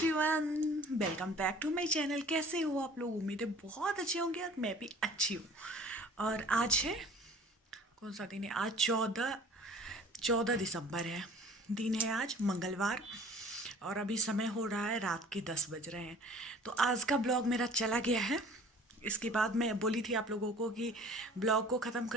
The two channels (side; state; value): both; normal; correlation 0.48